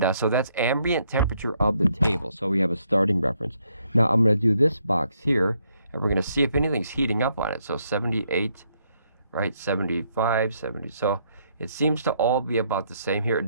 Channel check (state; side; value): inverted; both; correlation -0.73